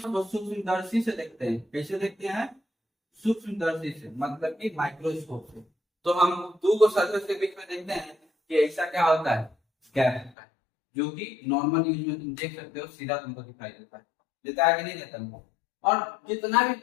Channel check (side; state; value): right; drops out; at 10.3 s